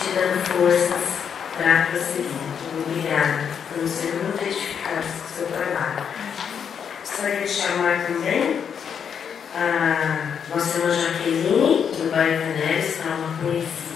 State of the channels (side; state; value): right; quieter; 7.5 dB